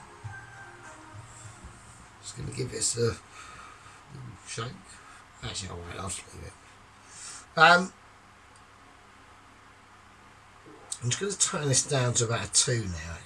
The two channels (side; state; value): both; identical; correlation 1.00